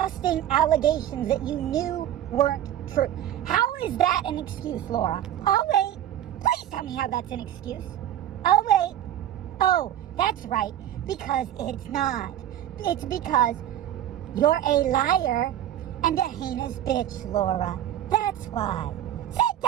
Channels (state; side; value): quieter; left; 11.6 dB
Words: allegations that you knew weren't true? How is that an excuse, Laura? Oh, wait. Please tell me how that's an excuse. Oh, wait. Oh, that's right. Because it's not. It's because you're a liar and a heinous bitch, Laura. That's why. Sit